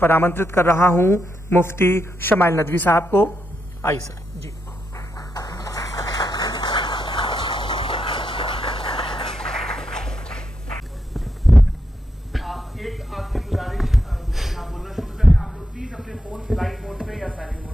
आमंत्रित कर रहा हूं मुफ्ती शमाइल नदवी साहब को। आइए सर जी। एक आपकी गुजारिश, आप बोलना शुरू करें। आप लोग प्लीज अपने फोन फ्लाइट मोड पे या साइलेंट मोड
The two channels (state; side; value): normal; both; correlation 0.83